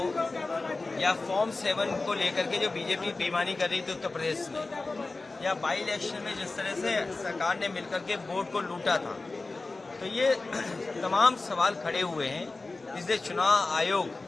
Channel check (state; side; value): quieter; right; 3.5 dB